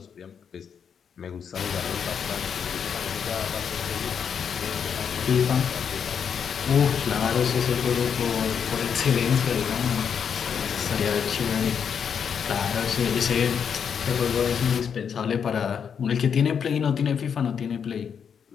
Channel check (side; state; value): right; quieter; 7.3 dB